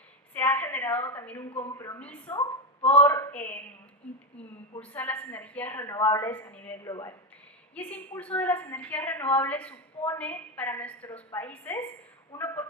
se ha generado también un compromiso por impulsar las energías renovables a nivel global. Y ese impulso de las energías renovables supone para nuestros países una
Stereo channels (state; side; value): normal; both; correlation 0.13